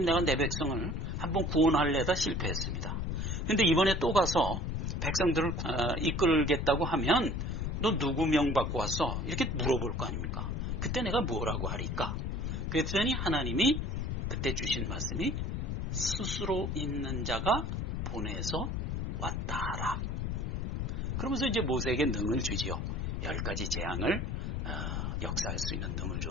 내가 내 백성을 한번 구원하려다 실패했습니다. 근데 이번에 또 가서 백성들을 이끌겠다고 하면 너 누구 명 받고 왔어? 이렇게 물어볼 거 아닙니까? 그때 내가 뭐라고 하리까? 그랬더니 하나님이 그때 주신 말씀이 스스로 있는 자가 보내서 왔다 하라. 그러면서 이제 모세에게 능을 주지요. 10가지 재앙을 역사할 수 있는 능을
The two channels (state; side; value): noise; left; rumble, 2 dB below the sound